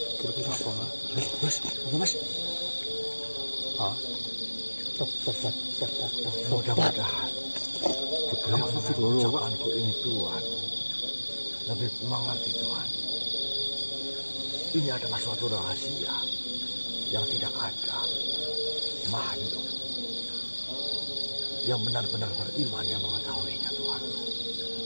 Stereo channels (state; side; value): inverted; both; correlation -1.00